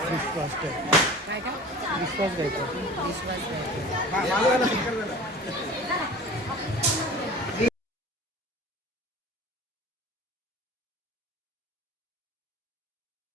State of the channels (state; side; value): normal; both; correlation 0.40